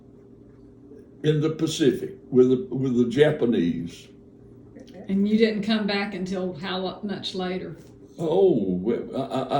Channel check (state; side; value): identical; both; correlation 1.00